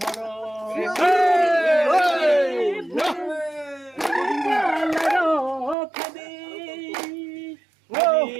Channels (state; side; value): drops out; left; at 5.8 s